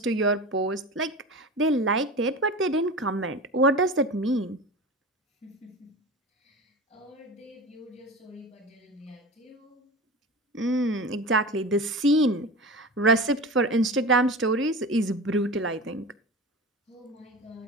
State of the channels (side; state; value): both; normal; correlation 0.31